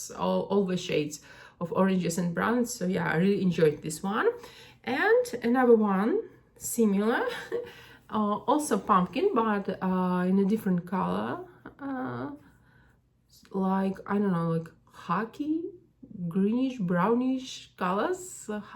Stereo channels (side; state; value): both; identical; correlation 1.00